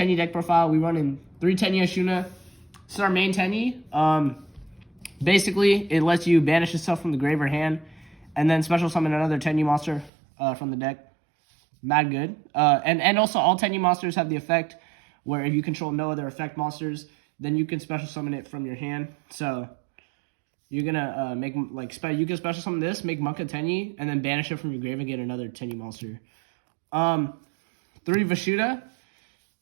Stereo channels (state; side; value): drops out; left; at 10.1 s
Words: deck profile, we run in 3 Tenyi Ashuna. This is our main Tenyi. Basically, it lets you banish yourself from the grave or hand, and then special summon another Tenyi monster from the deck. Mad good. And also, all Tenyi monsters have the effect where if you control no other effect monsters, then you can special summon it from your hand. So you're gonna you can special summon this, make Monka Tenyi, and then banish it from your grave and get another Tenyi monster. 3 Vashuda.